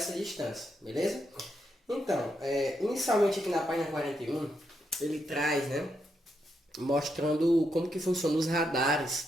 distância, beleza? Então, inicialmente aqui na página 41, ele traz, né, mostrando como que funcionam os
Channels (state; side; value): normal; both; correlation 0.81